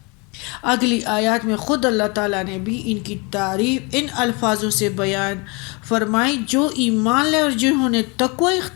اگلی آیات میں خود اللہ تعالیٰ نے بھی ان کی تعریف ان الفاظوں سے بیان فرمائی: جو ایمان لے اور جنہوں نے تقوی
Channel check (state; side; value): quieter; right; 29.5 dB